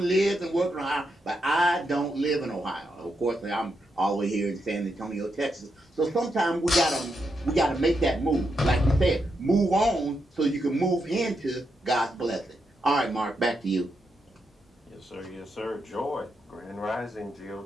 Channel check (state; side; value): normal; both; correlation 0.83